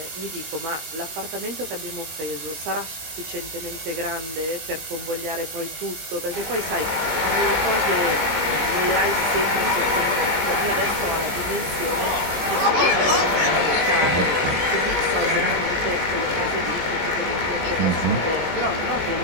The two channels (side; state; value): left; late; 19 ms